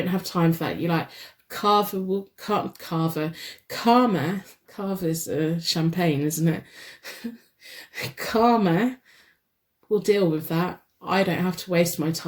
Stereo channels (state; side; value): identical; both; correlation 1.00